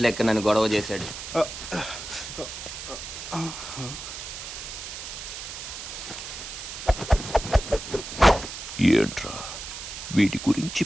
నన్ను గొడవ చేశాడు. ఏంట్రా వీడి గురించి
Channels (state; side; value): noise; right; hiss, 9 dB below the sound